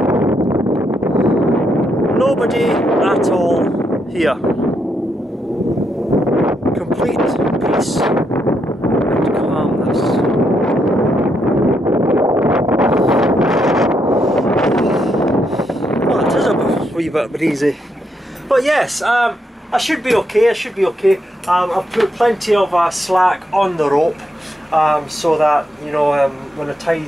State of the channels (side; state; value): both; normal; correlation 0.79